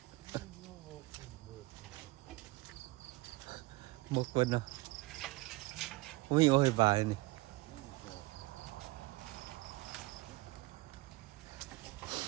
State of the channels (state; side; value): quieter; left; 21.4 dB